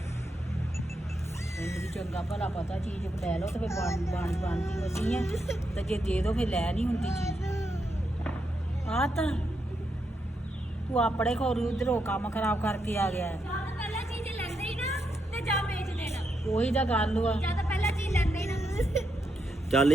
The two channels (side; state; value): both; normal; correlation 0.82